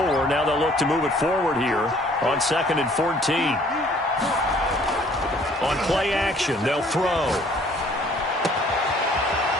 Now they'll look to move it forward here on 2nd and 14. On play action, they'll throw.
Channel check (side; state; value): both; normal; correlation 0.58